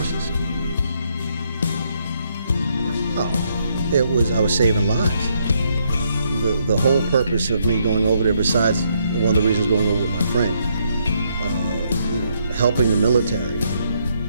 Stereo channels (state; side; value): inverted; both; correlation -0.74